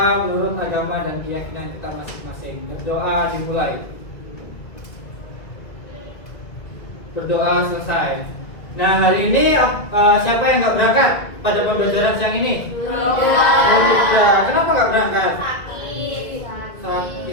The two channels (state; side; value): late; right; 2.2 ms